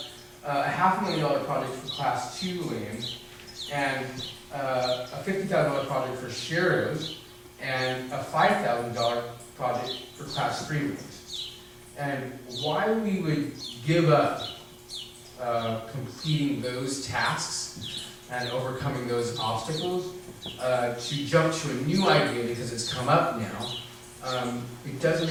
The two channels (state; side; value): identical; both; correlation 1.00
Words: a $500,000 project for class 2 lanes, and a $50,000 project for Sharrows, and a $5,000 project for class 3 lanes. And why we would give up completing those tasks and overcoming those obstacles to jump to a new idea because it's come up now, it doesn't